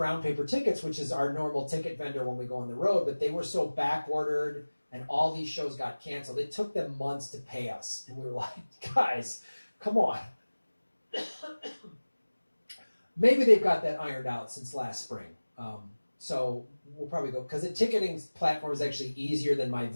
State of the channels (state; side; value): inverted; both; correlation -1.00